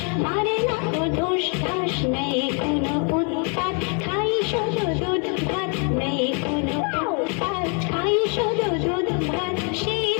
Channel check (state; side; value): quieter; right; 37.6 dB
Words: মারে না কো ধুস ধাস। নেই কোনো উৎপাত, খাই শুধু দুধ ভাত, নেই কোনো উৎপাত, খাই শুধু দুধ ভাত। সেই